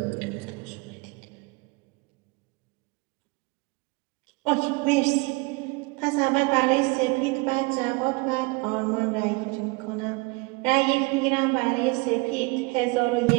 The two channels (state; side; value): quieter; left; 27.3 dB